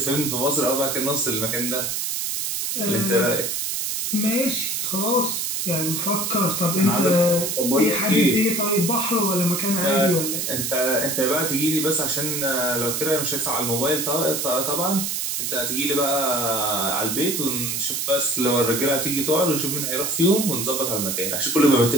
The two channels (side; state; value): right; noise; hiss, 1 dB below the sound